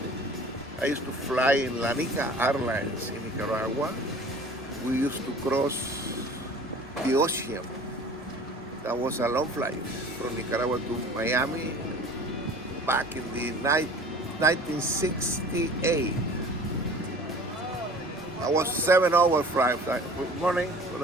used to fly in La Nica Airlines in Nicaragua, we used to cross the ocean. That was a long flight from Nicaragua to Miami back in the 1968. I was 7 hour flight. Good morning,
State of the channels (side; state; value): both; normal; correlation 0.45